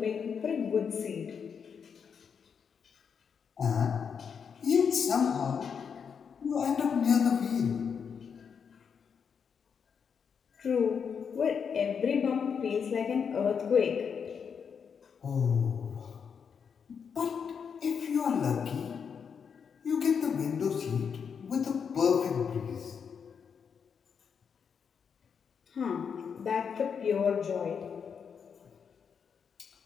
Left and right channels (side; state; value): right; quieter; 6.7 dB